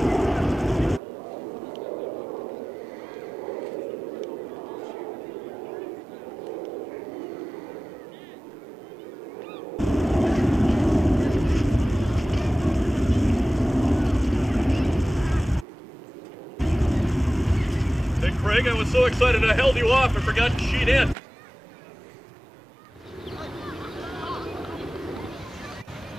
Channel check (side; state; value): both; normal; correlation 0.96